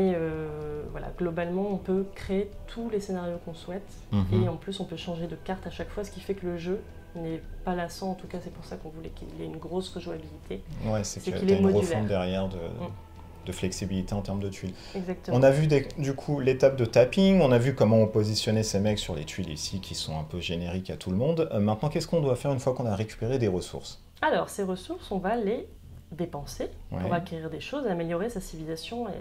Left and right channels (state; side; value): identical; both; correlation 1.00